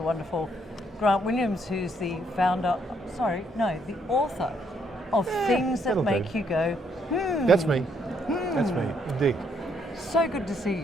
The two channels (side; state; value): both; normal; correlation 0.71